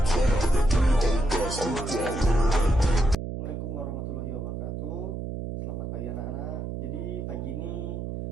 Assalamualaikum warahmatullahi wabarakatuh. Selamat pagi anak-anak. Jadi pagi ini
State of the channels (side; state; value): right; noise; hum, 5 dB below the sound